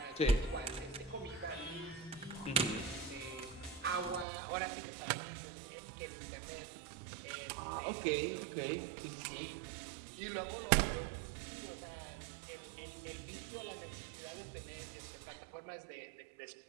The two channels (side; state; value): left; drops out; at 4.2 s